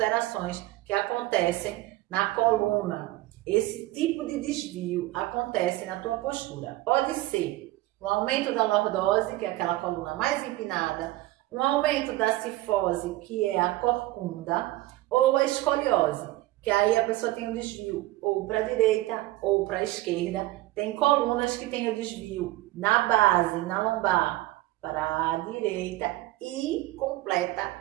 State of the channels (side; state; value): left; quieter; 17.6 dB